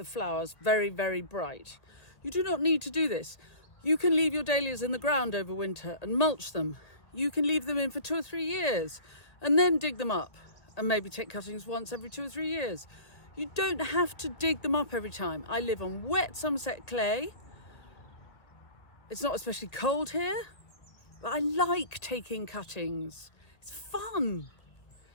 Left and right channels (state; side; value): late; right; 1.8 ms